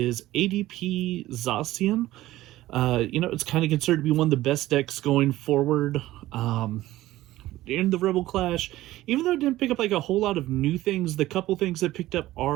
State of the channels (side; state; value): left; quieter; 16.0 dB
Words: ADP Zacian. It's kind of considered to be one of the best decks going forward in the Rebel Clash. Even though it didn't pick up like a whole lot of new things, the couple things that picked up